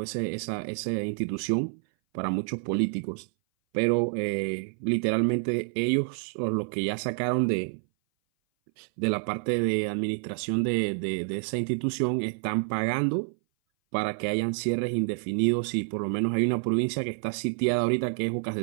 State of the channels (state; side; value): silent; left; 58 dB below the other